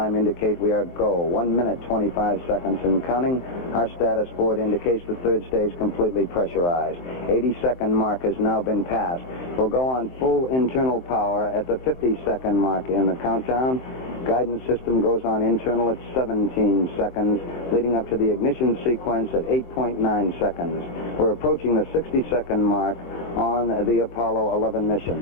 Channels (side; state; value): right; late; 23 ms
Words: indicate we are go. 1 minute, 25 seconds and counting. Our status board indicates the third stage completely pressurized. 80-second mark has now been passed. We'll go on full internal power at the 50-second mark in the countdown. Guidance system goes on internal at 17 seconds, leading up to the ignition sequence at 8.9 seconds. We're approaching the 60-second mark on the Apollo 11